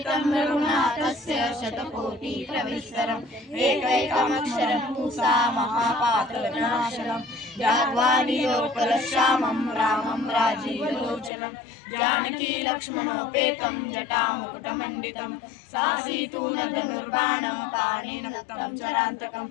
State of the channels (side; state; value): right; drops out; at 11.3 s